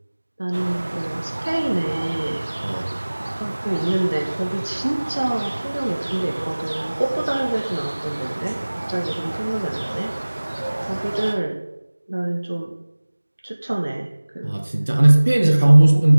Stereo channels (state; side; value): inverted; both; correlation -1.00